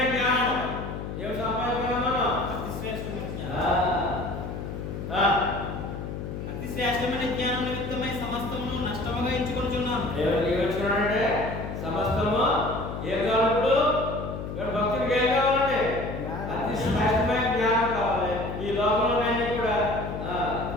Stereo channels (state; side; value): noise; left; hum, 7 dB below the sound